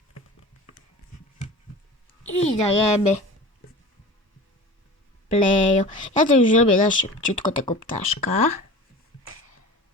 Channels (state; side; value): normal; both; correlation 0.37